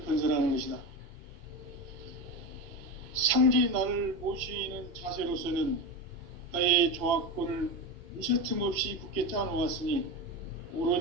건설하는 것이다. 상제인 나를 모시는 자세로서는 나의 조합권을 무쇠틈 없이 굳게 짜놓았으니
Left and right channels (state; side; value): late; left; 3.0 ms